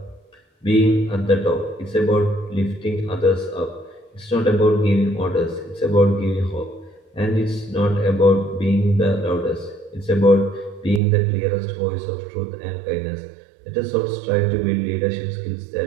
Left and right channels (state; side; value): drops out; left; at 11.0 s